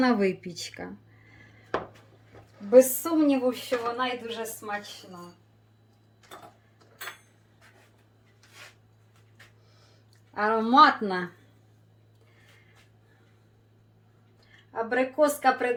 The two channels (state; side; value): identical; both; correlation 1.00